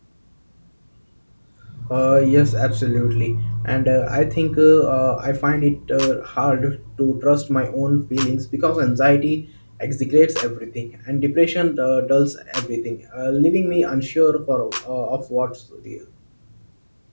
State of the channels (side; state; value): both; inverted; correlation -1.00